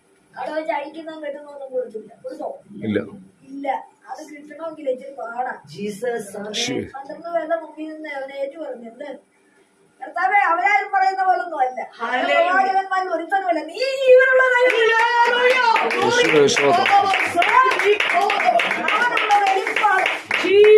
അവിടെ വെച്ച് അഴിക്കുന്നതും കെട്ടുന്നൊന്നും കൊടുത്തില്ല. കൊടുത്തോ? ഇല്ല. ഇല്ല. അത് കിട്ടണമെങ്കിൽ ഇച്ചിരി പാടാ. 12 പേരുടെ മുമ്പിൽ നിന്ന് അവനെ ഏറ്റു പറഞ്ഞു, എന്ത് കർത്താവേ, അവരാരും പറയുന്ന പോലൊന്നും അല്ല, പ്രവാചകന്മാരിൽ ഒരുത്തനുമല്ല, നീ ജീവനുള്ള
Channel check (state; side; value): identical; both; correlation 1.00